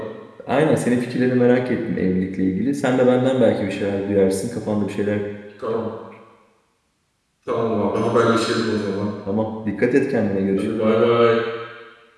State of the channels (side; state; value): both; identical; correlation 1.00